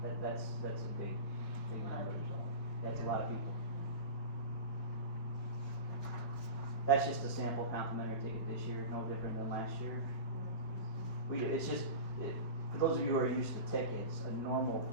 that's a big number, so that's a lot of people. That's just a sample complimentary ticket this year, no different than last year. For those of you who are used to tickets, a normal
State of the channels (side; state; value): right; late; 5.1 ms